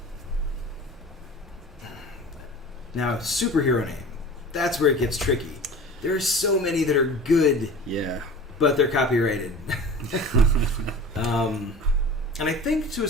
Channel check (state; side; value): normal; both; correlation 0.38